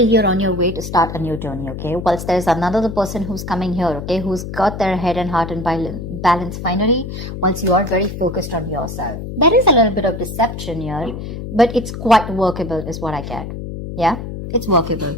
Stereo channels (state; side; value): noise; left; hum, 8 dB below the sound